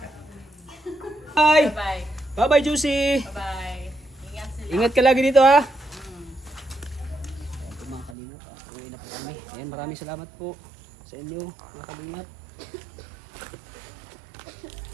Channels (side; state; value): left; drops out; at 8.2 s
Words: Bye. Bye. Bye-bye, Juicy. Bye. Ingat sila. Ingat ka lagi dito, ha? Ayan po mga kalingap. Uwi na po kami. Ayan, maraming salamat po sa inyo, mga kalingap.